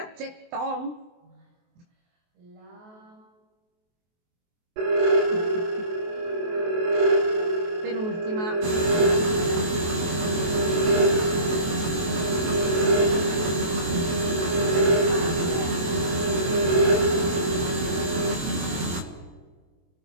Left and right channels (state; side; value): late; left; 23 ms